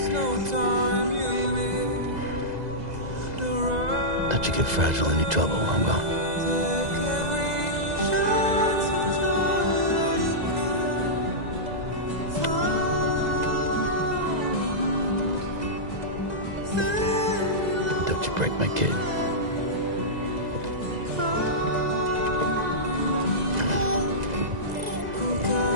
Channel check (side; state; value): left; late; 2.0 ms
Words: Don't you get fragile any trouble while I'm gone. kid.